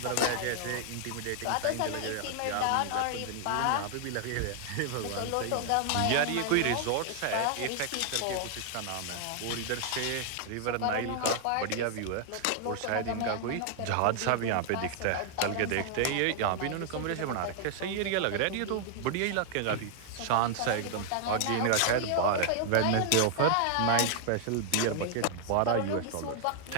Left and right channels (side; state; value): both; different; correlation 0.00